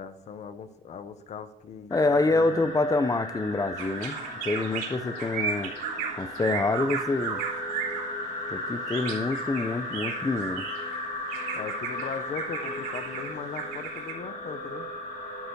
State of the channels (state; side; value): normal; both; correlation 0.54